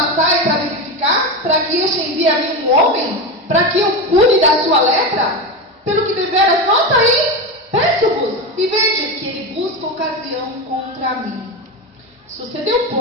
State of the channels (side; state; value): both; normal; correlation 0.19